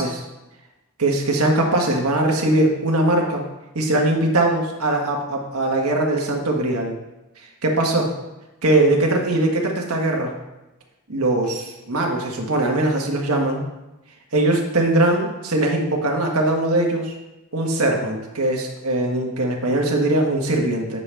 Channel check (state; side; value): normal; both; correlation 0.15